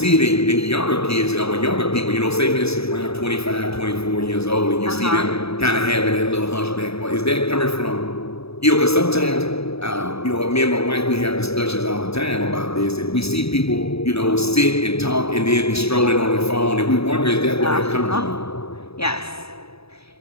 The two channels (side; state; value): right; late; 0.78 ms